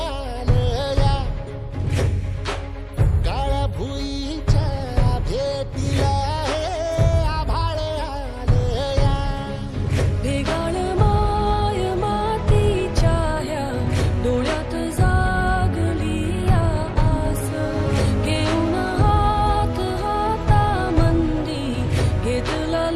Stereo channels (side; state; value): both; identical; correlation 1.00